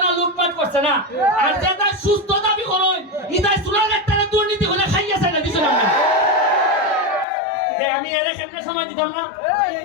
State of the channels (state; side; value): drops out; right; at 7.2 s